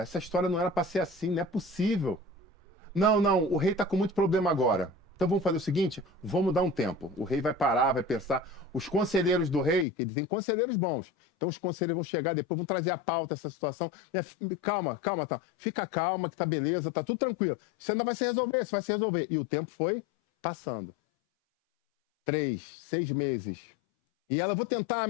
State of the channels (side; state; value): right; drops out; at 9.9 s